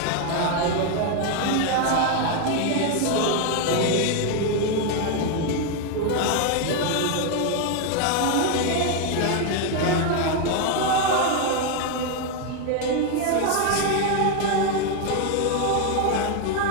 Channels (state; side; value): different; both; correlation 0.01